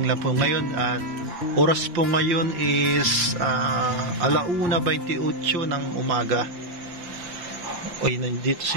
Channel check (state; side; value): late; left; 5.7 ms